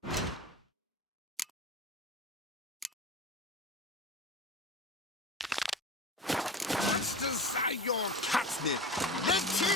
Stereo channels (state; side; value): normal; both; correlation 0.32